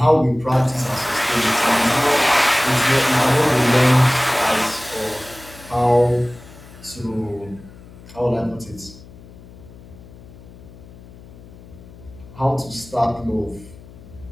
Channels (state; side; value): noise; left; hum, 20 dB below the sound